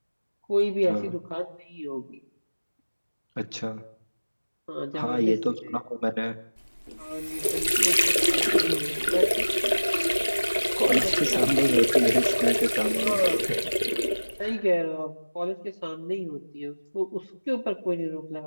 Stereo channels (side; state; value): both; inverted; correlation -1.00